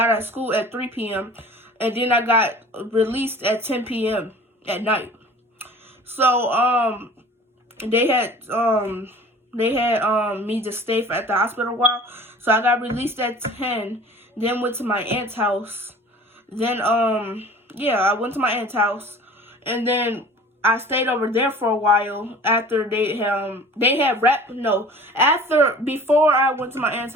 out of school at 3 p.m. And then I got released at 10 p.m. at night. So, they had me to stay at the hospital a while. So I got released at 10, then went to my aunt's house. Then, I went to my aunt's house, and then I stayed over there for a while after before I went to my aunt's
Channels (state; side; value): normal; both; correlation 0.44